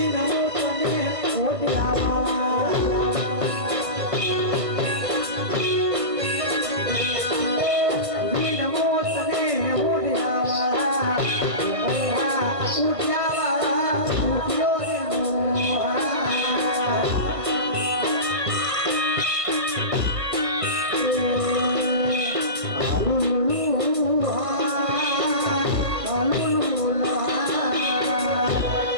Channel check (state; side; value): late; left; 1.5 ms